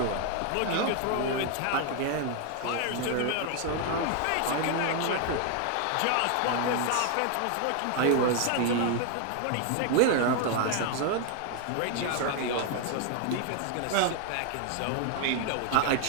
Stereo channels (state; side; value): different; both; correlation 0.00